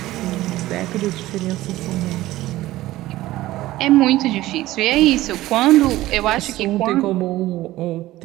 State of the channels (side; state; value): left; quieter; 16.5 dB